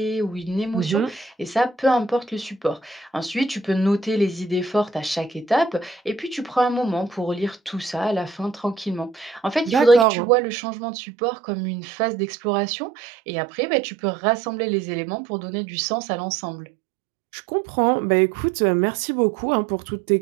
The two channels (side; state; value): left; drops out; at 10.1 s